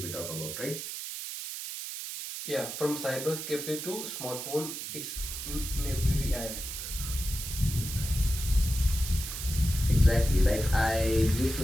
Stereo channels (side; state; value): right; noise; hiss, 7 dB below the sound